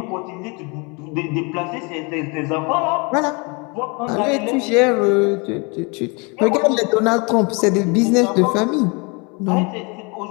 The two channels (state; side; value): quieter; right; 30.4 dB